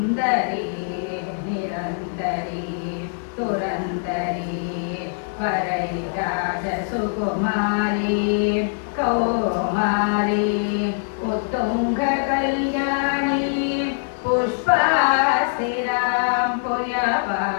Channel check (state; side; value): silent; right; 64 dB below the other